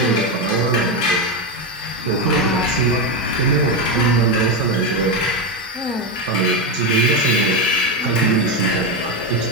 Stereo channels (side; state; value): both; normal; correlation 0.10